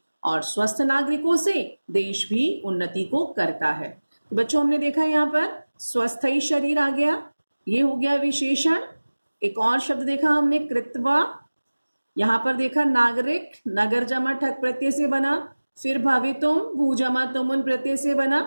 और स्वस्थ नागरिकों से देश भी उन्नति को करता है। तो बच्चों हमने देखा यहाँ पर स्वस्थ ही शरीर आ गया, ये हो गया विशेषण। एक और शब्द देखा हमने कृत्वा, यहाँ पर देखा नागरिक, नगर जमा ठक प्रत्यय से बना, फिर भवितुम भू जमा तुमुन प्रत्यय से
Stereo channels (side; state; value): both; inverted; correlation -1.00